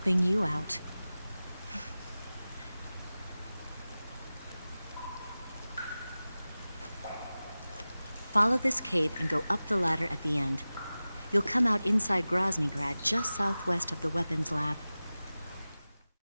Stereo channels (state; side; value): inverted; both; correlation -0.97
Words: you out. Follow this cave and go up the ladder at the end. You'll come out inside Groznygrad, just southwest of the weapons lab.